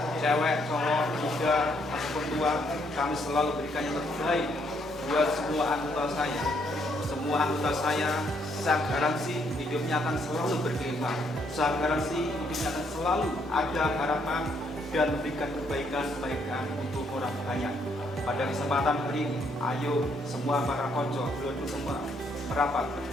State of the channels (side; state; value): both; normal; correlation 0.71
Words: cewek, cowok, muda, ataupun tua, kami selalu berikan yang terbaik buat semua anggota saya. Semua anggota saya garansi hidupnya akan selalu berkembang. Saya garansi hidupnya akan selalu ada harapan dan memberikan kebaikan-kebaikan untuk orang banyak. Pada kesempatan hari ini, ayo semua para konco, dulu semua merapat